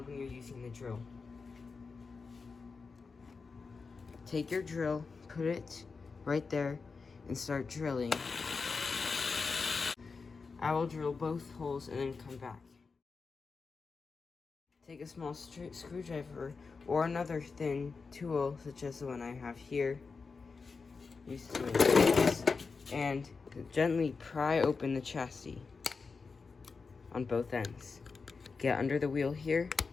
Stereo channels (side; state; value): right; quieter; 4.7 dB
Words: when you're using the drill. Take your drill, put it right there, and start drilling. I will drill both holes and then come back. Take a small screwdriver or another thin tool, such as the one I have here, and gently pry open the chassis on both ends. Get under the wheel here